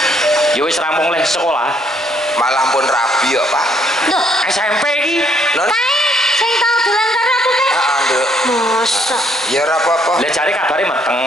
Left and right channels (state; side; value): normal; both; correlation 0.68